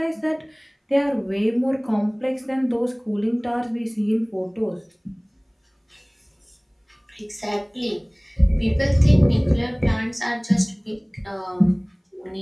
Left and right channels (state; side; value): identical; both; correlation 1.00